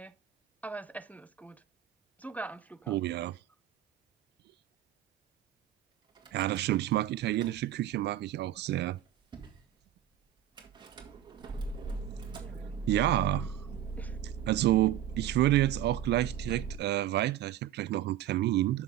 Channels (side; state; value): left; quieter; 11.9 dB